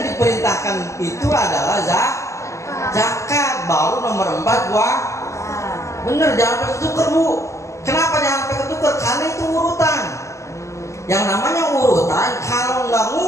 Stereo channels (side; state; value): right; late; 0.14 ms